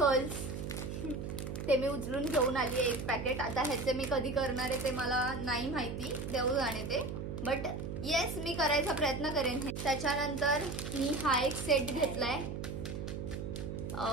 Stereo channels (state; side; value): noise; right; hum, 5 dB below the sound